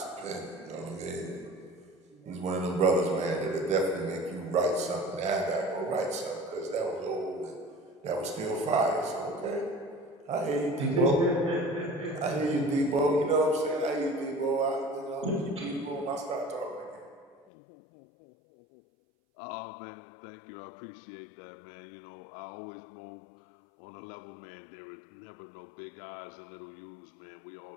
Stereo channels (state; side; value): drops out; right; at 17.4 s